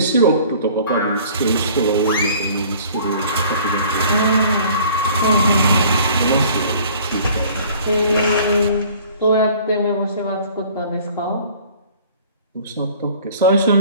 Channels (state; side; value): inverted; both; correlation -0.51